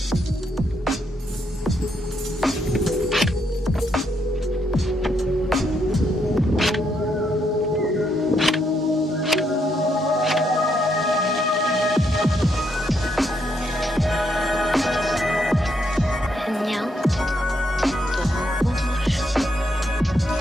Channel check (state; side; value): normal; both; correlation 0.76